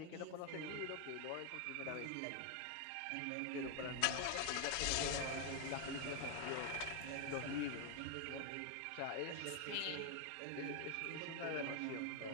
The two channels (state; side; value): different; both; correlation 0.00